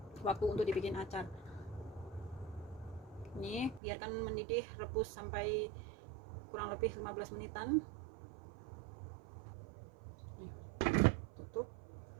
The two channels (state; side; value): drops out; left; at 3.8 s